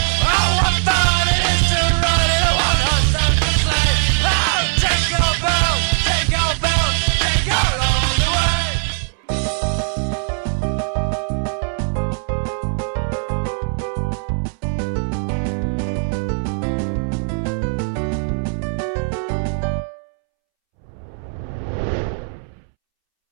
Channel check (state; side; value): silent; left; 66 dB below the other